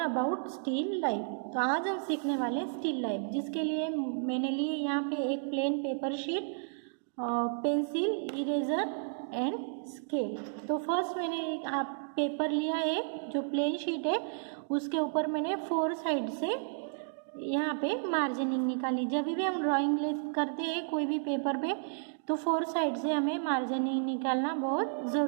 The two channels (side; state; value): left; silent; digital silence